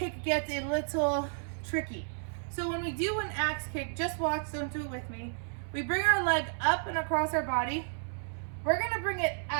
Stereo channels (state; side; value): silent; left; 56 dB below the other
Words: gets a little tricky. So when we do an axe kick, just watch, don't do it with me. We bring our leg up and across our body. We're gonna bring it